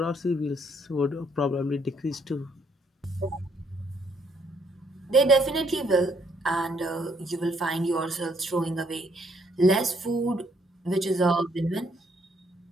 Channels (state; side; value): normal; both; correlation 0.69